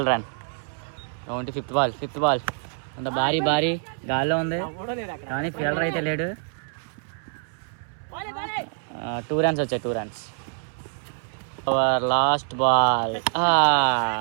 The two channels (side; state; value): left; silent; 61 dB below the other